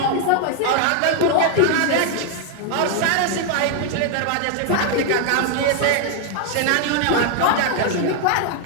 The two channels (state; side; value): different; both; correlation 0.00